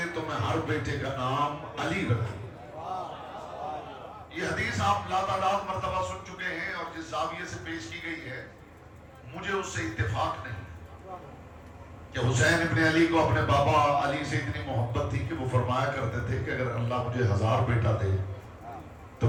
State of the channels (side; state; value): both; identical; correlation 1.00